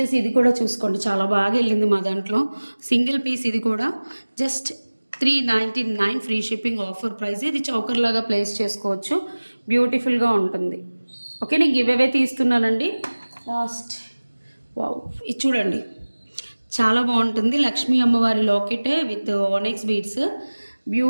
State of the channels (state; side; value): inverted; both; correlation -1.00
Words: ఇది కూడా చూసుకోండి, చాలా బాగా వెళ్ళింది మా దాంట్లో. సింగిల్ పీస్ ఇది కూడా just 399 free shipping offer price. ఇది చౌకర్ లాగా ప్లేస్ చేసుకోవచ్చు, బ్యూటిఫుల్గా ఉంటుంది. ఓకే, నేను గివ్ అవే తీస్తున్నానండి లాస్ట్. వావ్, ఇది చూడండి చాలా బాగుంటుంది. లక్ష్మీ అమ్మవారి లాకెట్ విత్ ఆనెక్స్ బీడ్స్,